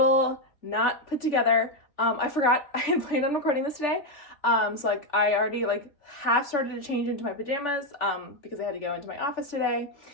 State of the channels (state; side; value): late; right; 3.4 ms